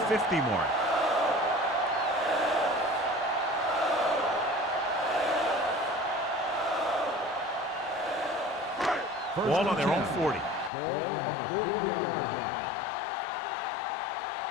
mark. Ball on their own 40. Ball on the 40-yard line. Do something.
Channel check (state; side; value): drops out; right; at 10.7 s